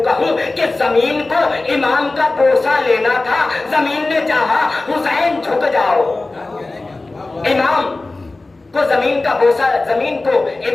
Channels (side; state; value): right; quieter; 3.2 dB